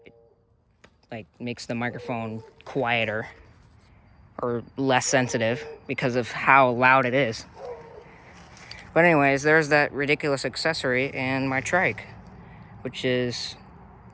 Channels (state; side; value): identical; both; correlation 1.00